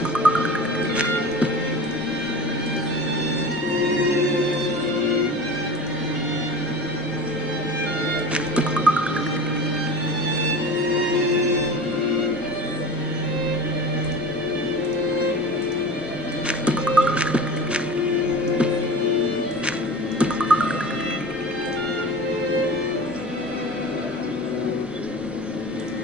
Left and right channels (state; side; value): normal; both; correlation 0.35